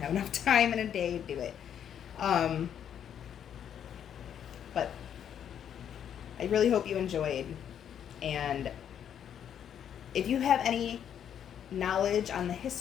enough time in a day to do it. But I really hope you enjoyed, and if you have any knowledge on the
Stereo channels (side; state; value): right; quieter; 9.1 dB